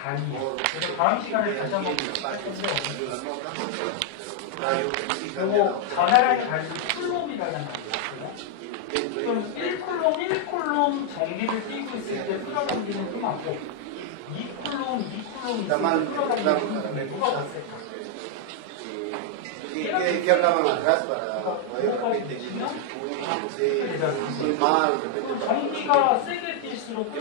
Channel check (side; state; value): both; different; correlation 0.00